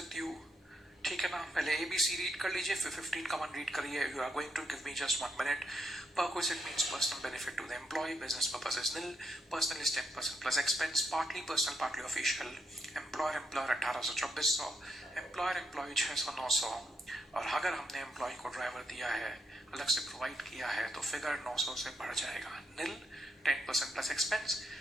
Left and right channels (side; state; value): both; normal; correlation 0.79